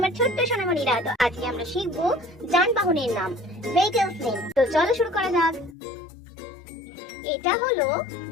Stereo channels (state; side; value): drops out; right; at 5.8 s